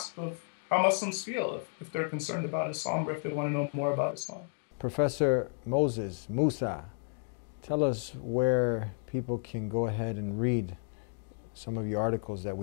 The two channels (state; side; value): silent; right; 56 dB below the other